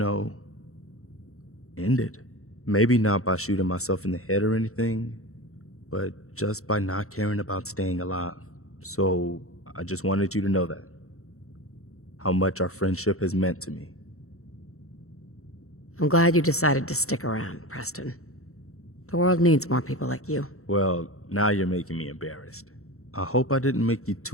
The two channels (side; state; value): right; late; 0.64 ms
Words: end it. Maybe not by shooting myself in the head or anything, but just by not caring about staying alive. So I just wanted you to know that. How much our friendship has meant to me. I'm glad you decided to stick around, Preston. The world needs more people like you. Well, now you're making me embarrassed. I hope I didn't make you